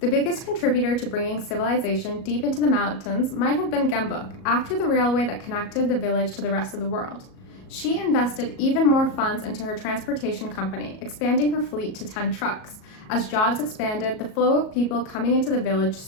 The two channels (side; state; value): right; late; 37 ms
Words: The biggest contributor to bringing civilization deep into the mountains might have been Gyeongbok, after the railway that connected the village to the rest of the world. She invested even more funds into her transportation company, expanding her fleet to 10 trucks. As jobs expanded, the flow of people coming into the village